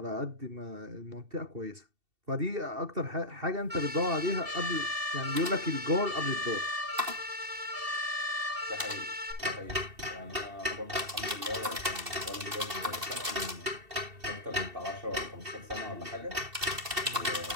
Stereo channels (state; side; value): late; left; 2.7 ms